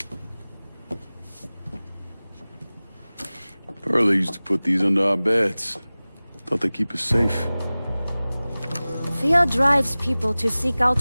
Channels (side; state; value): both; inverted; correlation -0.99